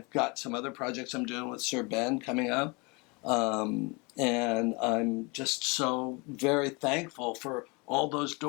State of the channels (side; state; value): right; quieter; 28.8 dB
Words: got some other projects I'm doing with Sir Ben coming up, and I'm just so very thankful for all those